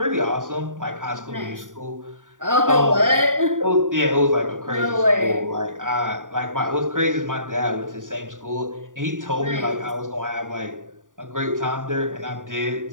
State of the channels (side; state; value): left; late; 0.88 ms